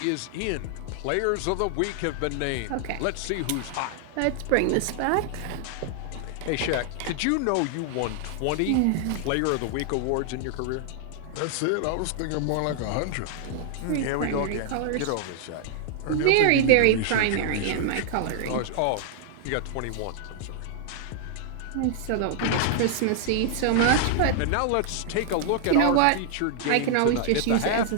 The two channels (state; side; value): different; both; correlation 0.00